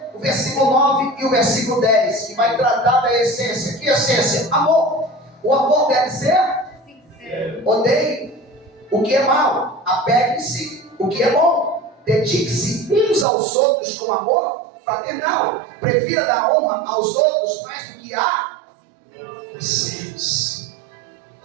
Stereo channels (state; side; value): drops out; left; at 13.2 s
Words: o versículo 9 e o versículo 10, que vai tratar da essência. Que essência? Amor. O amor deve ser sincero. Odeie o que é mal, apegue-se o que é bom, dedique-se uns aos outros com amor fraternal, prefira dar honra aos outros mais do que a vocês.